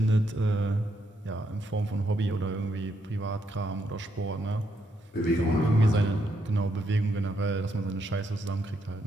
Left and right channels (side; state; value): both; normal; correlation 0.77